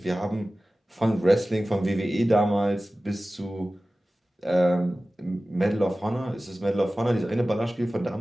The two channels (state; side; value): normal; both; correlation 0.96